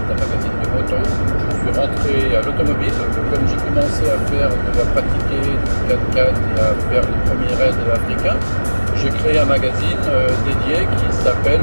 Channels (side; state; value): both; inverted; correlation -1.00